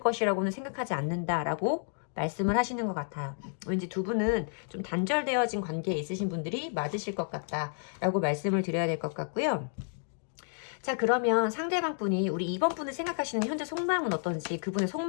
생각하지 않는다라고 말씀을 하시는 것 같아요. 왠지 두 분은 좀 단절되어진 관계에 있으신 분들이 맞으실 것 같다라고 말씀을 드려야 될 것 같고요. 자, 그러면 상대방 분이 우리 2번 분을 생각하시는 현재 속마음은 어떤지 그분의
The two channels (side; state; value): right; silent; 57 dB below the other